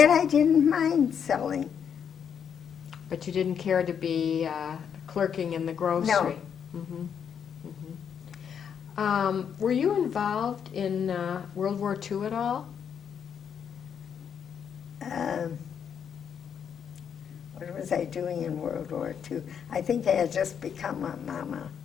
I didn't mind selling. But you didn't care to be clerking in the grocery? No. Were you involved in World War II at all? What was I doing in World War II? I think I had just become a mama.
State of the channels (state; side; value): quieter; right; 7.7 dB